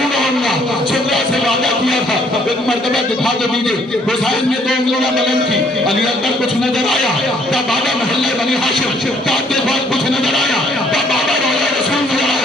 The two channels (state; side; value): normal; both; correlation 0.64